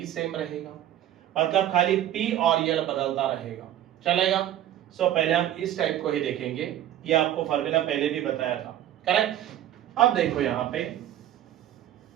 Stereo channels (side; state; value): left; quieter; 12.1 dB